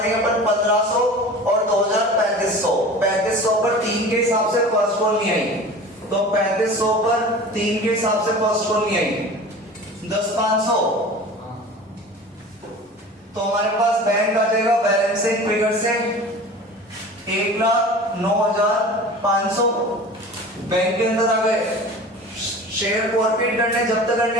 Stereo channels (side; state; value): both; normal; correlation 0.38